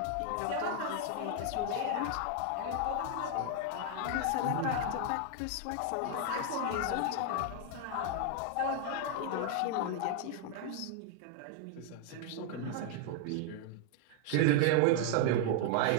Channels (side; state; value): both; different; correlation 0.00